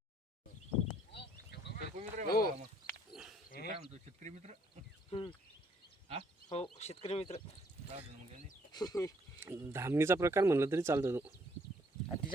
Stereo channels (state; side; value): normal; both; correlation 0.66